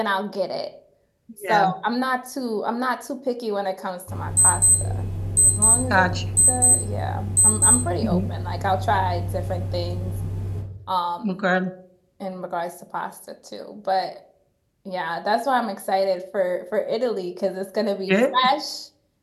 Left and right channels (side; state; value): both; identical; correlation 1.00